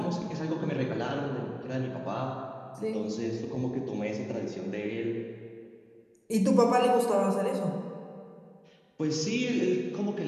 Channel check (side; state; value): both; identical; correlation 1.00